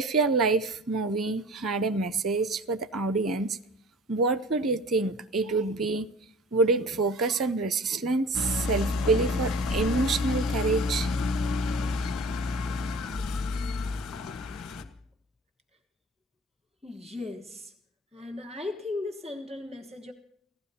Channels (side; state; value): both; normal; correlation 0.43